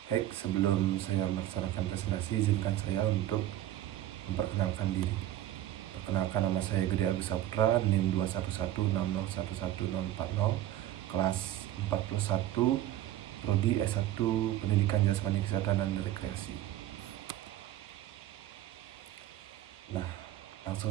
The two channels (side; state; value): left; quieter; 13.4 dB